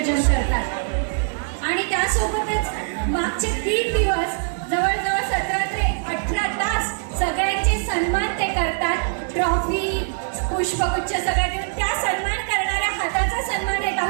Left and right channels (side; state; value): left; silent; digital silence